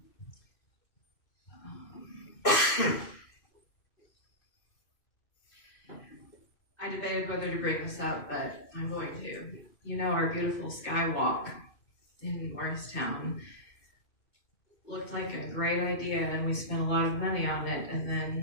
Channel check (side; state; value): right; late; 2.5 ms